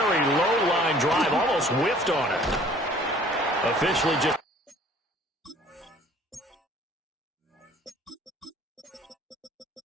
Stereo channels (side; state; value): both; normal; correlation 0.53